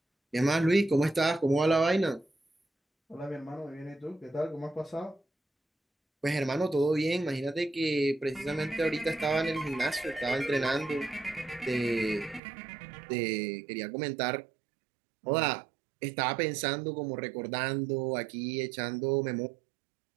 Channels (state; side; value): drops out; left; at 12.4 s